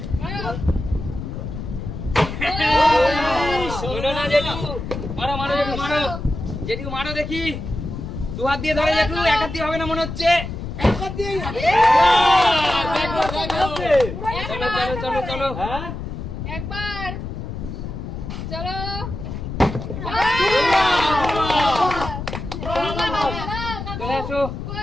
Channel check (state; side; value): noise; left; rumble, 7 dB below the sound